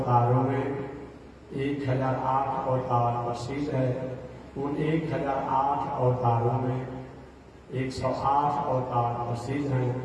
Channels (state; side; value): identical; both; correlation 1.00